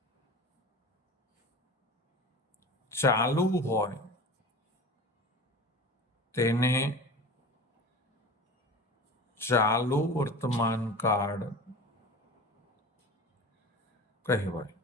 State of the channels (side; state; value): both; normal; correlation 0.34